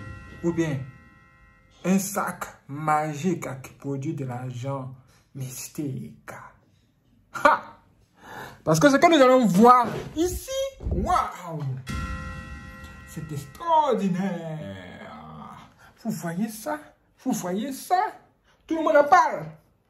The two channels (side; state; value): both; identical; correlation 1.00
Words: ou bien un sac magique qui produit de l'argent mystique? Ha! Parce que ce que nous allons voir ici, waouh, c'est extraordinaire. Vous voyez ça? Vous voyez ça? Tout le monde en parle.